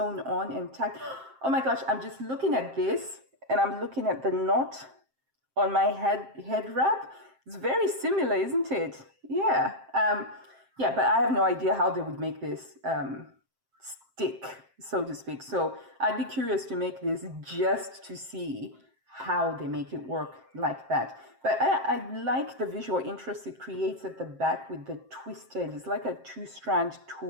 on and tacked. Oh my gosh, I'm just looking at this and I'm looking at the knot on my head wrap. It's very similar, isn't it? Yeah. Yeah, but I have no idea how they would make this stick, so to speak. So I'd be curious to make this just to see how they make it work like that. But I like the visual interest it creates at the back with the twisted. It's like a 2-strand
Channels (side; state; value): left; late; 7.6 ms